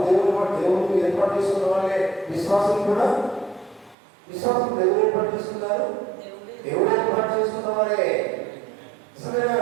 దేవుడు ఏర్పాటు చేసుకున్న వాళ్ళే. విశ్వాసం కూడా విశ్వాసం దేవుడు ఏర్పాటు చేసుకున్నారు, దేవుడు ఏర్పాటు చేసుకున్న వారే.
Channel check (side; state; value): left; drops out; at 4.0 s